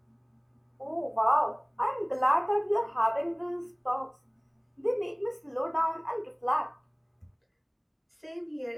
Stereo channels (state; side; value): identical; both; correlation 1.00